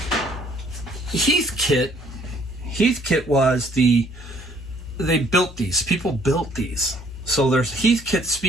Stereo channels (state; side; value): normal; both; correlation 0.62